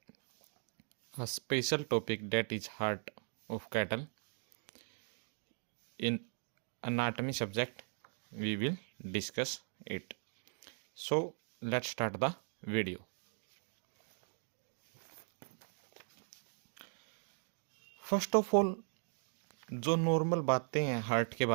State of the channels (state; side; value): silent; left; 52 dB below the other